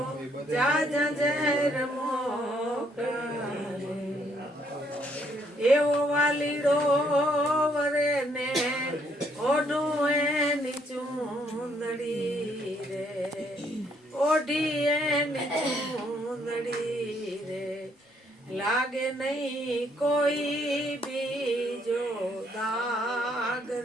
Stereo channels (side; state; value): both; normal; correlation 0.70